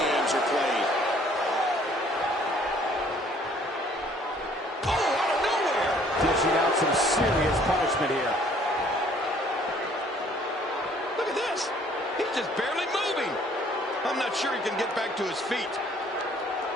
are played. Oh, out of nowhere. Dishing out some serious punishment here. Look at this. He's just barely moving. I'm not sure he can get back to his feet.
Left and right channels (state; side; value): normal; both; correlation 0.59